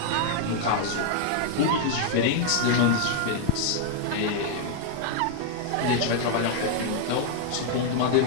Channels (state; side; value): different; both; correlation 0.00